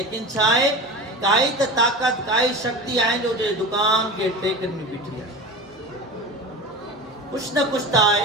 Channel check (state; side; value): normal; both; correlation 0.30